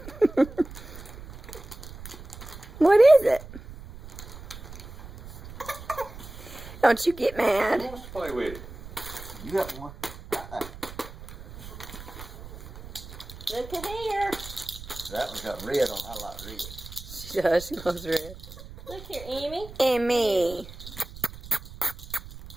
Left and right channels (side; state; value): right; noise; rumble, 14 dB below the sound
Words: What is it? Don't you get Who mad. wants to play with it? You got one. Look at here. That one's got red on. I like red. She does. She loves red. Look here, Emmy. And me.